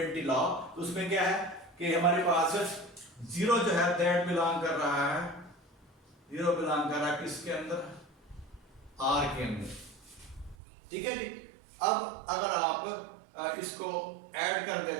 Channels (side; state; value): left; drops out; at 10.6 s